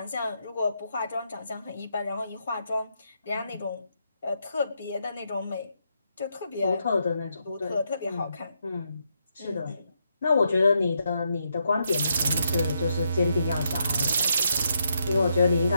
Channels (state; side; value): inverted; both; correlation -0.79